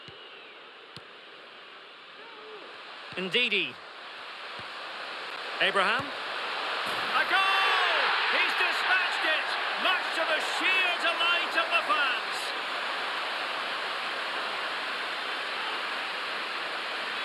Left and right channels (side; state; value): both; identical; correlation 1.00